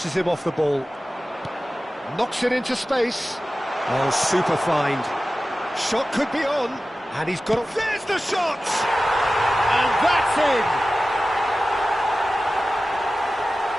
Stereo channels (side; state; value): both; normal; correlation 0.95